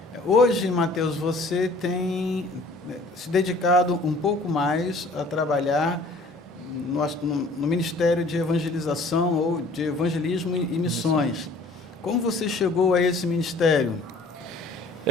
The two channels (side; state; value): both; normal; correlation 0.53